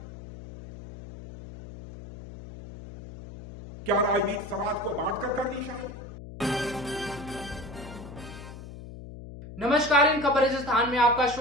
क्या राजनीति समाज को बांटकर करनी चाहिए? नमस्कार, इन खबर राजस्थान में आपका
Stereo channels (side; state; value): left; noise; hum, 12 dB below the sound